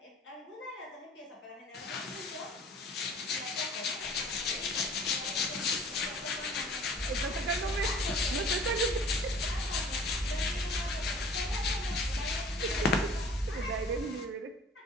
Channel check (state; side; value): normal; both; correlation 0.49